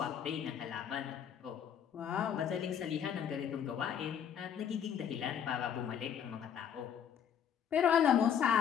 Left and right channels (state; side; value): quieter; right; 8.5 dB